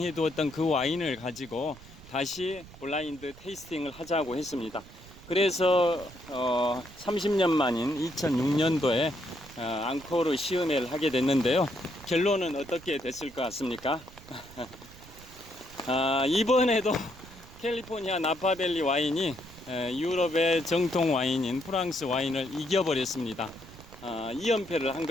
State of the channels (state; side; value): noise; right; rumble, 19 dB below the sound